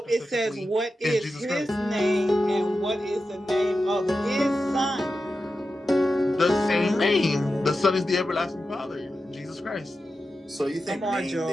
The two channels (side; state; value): both; normal; correlation 0.91